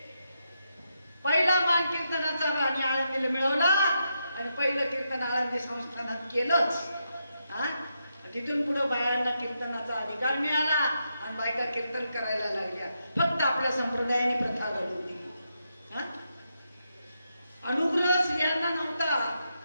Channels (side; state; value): both; inverted; correlation -0.83